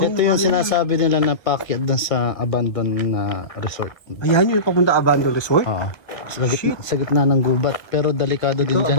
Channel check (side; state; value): right; late; 1.7 ms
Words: yung sinasabi nila na paakyat doon sa abandoned na resort. Ayan yung papunta Abandon Resort. Oo. Sa gitna ng gubat. Pero delikado din Ito, dyan.